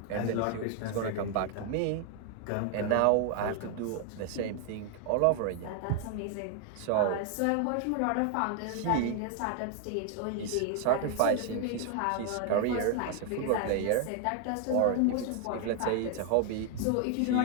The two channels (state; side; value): different; both; correlation 0.00